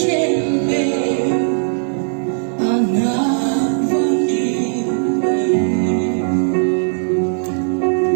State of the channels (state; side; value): silent; left; 68 dB below the other